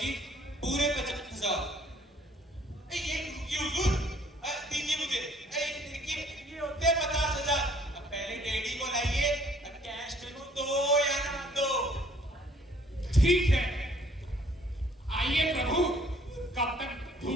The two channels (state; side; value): normal; both; correlation 0.60